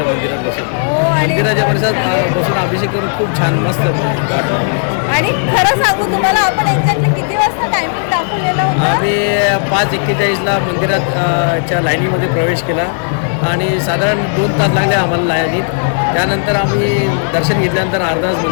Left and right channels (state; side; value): silent; right; digital silence